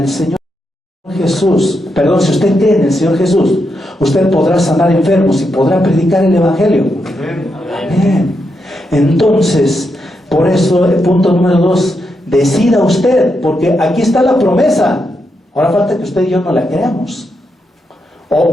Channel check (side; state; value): both; normal; correlation 0.83